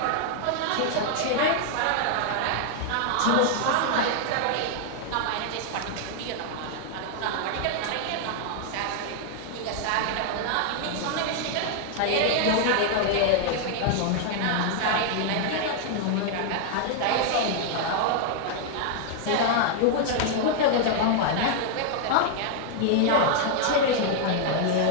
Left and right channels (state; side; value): different; both; correlation 0.00